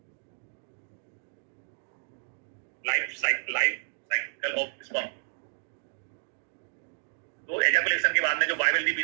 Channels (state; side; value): silent; left; digital silence